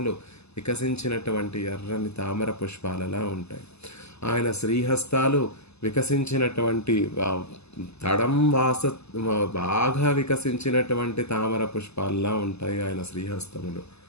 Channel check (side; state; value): right; late; 0.79 ms